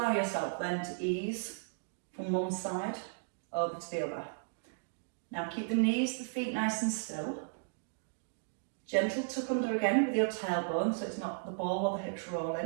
yourself then to ease from one side over to the other. Now keep the knees, the feet nice and still. Gentle tuck under again with your tailbone so it's not the ball or the hips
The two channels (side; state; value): left; silent; digital silence